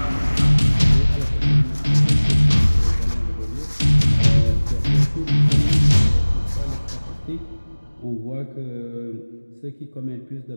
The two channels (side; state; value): both; inverted; correlation -1.00